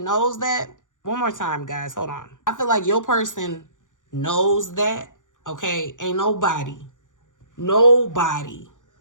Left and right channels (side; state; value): right; late; 0.87 ms